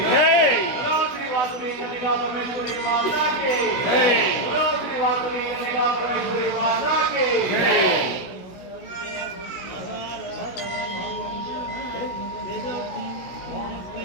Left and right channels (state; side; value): late; right; 16 ms